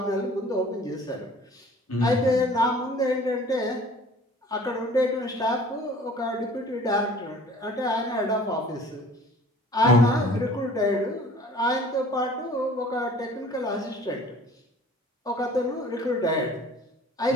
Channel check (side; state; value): both; normal; correlation 0.49